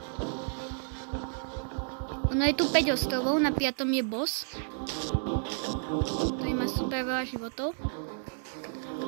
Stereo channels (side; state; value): left; silent; 57 dB below the other